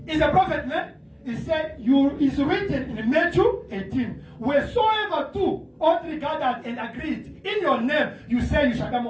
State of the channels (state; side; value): identical; both; correlation 1.00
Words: He's a prophet, man. He said, it's written in Matthew 18, wheresoever two or three gathered and agreed in your name, you say you shall be